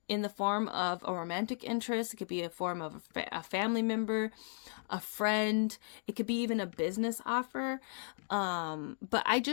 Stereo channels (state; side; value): silent; right; digital silence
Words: in the form of a romantic interest. It could be a form of a family member, a friend. It could be even a business offer. But I